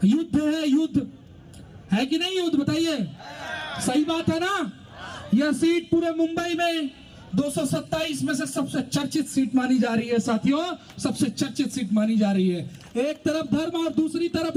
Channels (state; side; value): identical; both; correlation 1.00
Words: युद्ध है, युद्ध है कि नहीं युद्ध, बताइए, सही बात है ना। यह सीट पूरे मुंबई में 227 में से सबसे चर्चित सीट मानी जा रही है साथियों, सबसे चर्चित सीट मानी जा रही है। एक तरफ धर्म और दूसरी